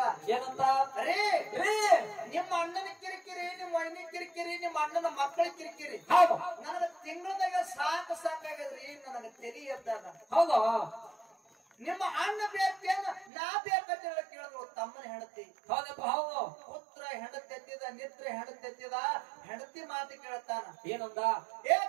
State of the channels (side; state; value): left; drops out; at 13.3 s